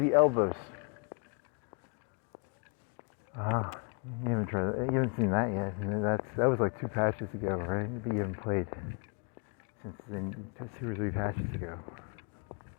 elbows. You haven't tried that. You haven't seen that yet. That was like 2 patches ago, right? But you haven't played since then. 2 or 3 patches ago.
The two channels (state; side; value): quieter; right; 36.1 dB